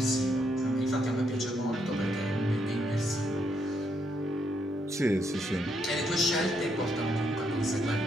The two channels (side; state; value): both; normal; correlation 0.76